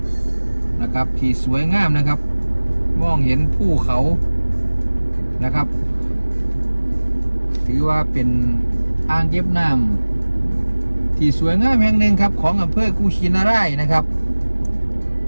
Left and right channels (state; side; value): inverted; both; correlation -1.00